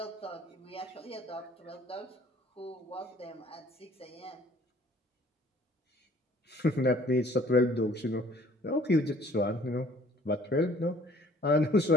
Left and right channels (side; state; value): both; normal; correlation 0.55